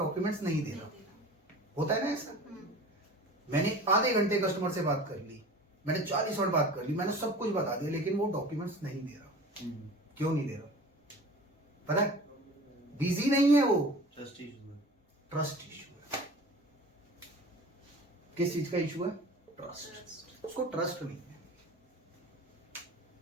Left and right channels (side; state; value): both; normal; correlation 0.40